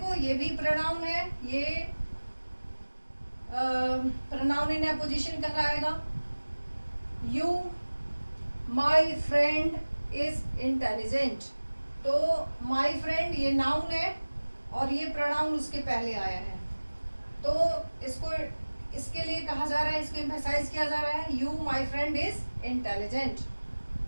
ये भी प्रोनाउन है, ये प्रोनाउन इन अपोजिशन कहलाएगा। You my friend is intelligent. तो माई फ्रेंड ये नाउन है और ये प्रोनाउन उसके पहले आया है, तो इसको इसके लिए कहा जा रहा है, इसको एम्फसाइज किया जा रहा है, you my friend is intelligent.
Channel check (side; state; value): both; inverted; correlation -1.00